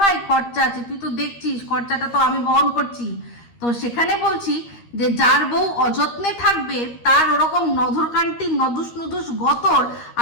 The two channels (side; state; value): right; late; 13 ms